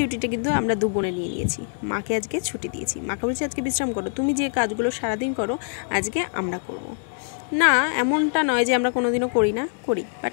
কিন্তু আমরা দু বোনে নিয়ে নিয়েছি। মাকে আজকে ছুটি দিয়েছি। মাকে বলেছি আজকে বিশ্রাম করো, তুমি যে কাজগুলো সারা দিন করো আজকে আমরা করব না। এমনটা নয় যে আমরা কোনোদিনও করি না, করি, বাট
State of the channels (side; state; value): right; silent; digital silence